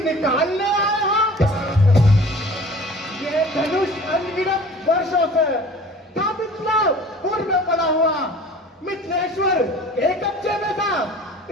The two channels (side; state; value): both; normal; correlation 0.45